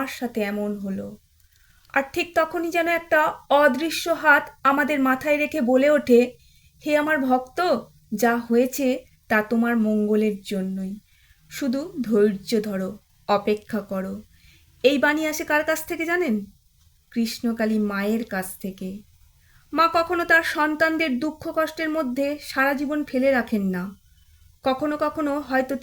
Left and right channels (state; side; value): identical; both; correlation 1.00